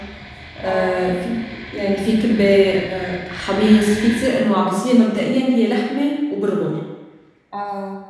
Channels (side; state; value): both; identical; correlation 1.00